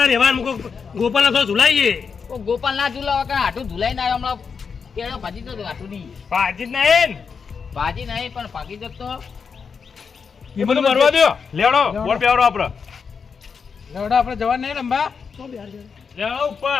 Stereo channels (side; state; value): right; quieter; 5.8 dB